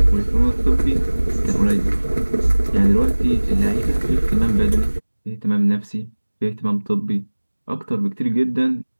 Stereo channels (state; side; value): inverted; both; correlation -1.00